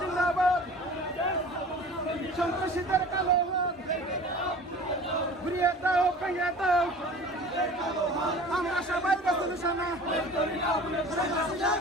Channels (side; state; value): both; normal; correlation 0.41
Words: সন্ত্রাসীদের কালো হাত ঘুরিয়ে দাও, ভেঙে দাও। আমরা সবাই নিশানা